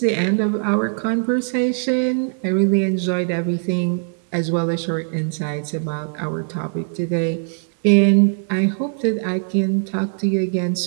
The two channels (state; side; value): silent; left; digital silence